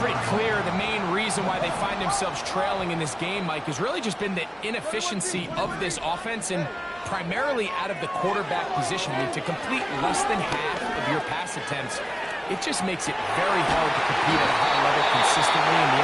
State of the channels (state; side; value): identical; both; correlation 1.00